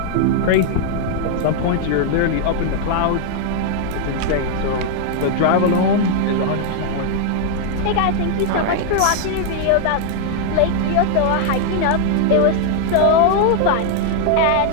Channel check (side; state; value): both; different; correlation 0.00